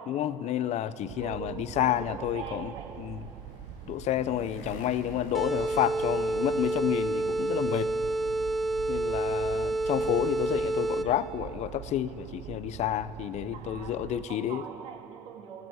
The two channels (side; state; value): right; quieter; 3.9 dB